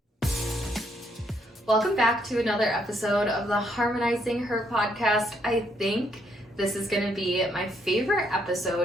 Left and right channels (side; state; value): both; normal; correlation 0.73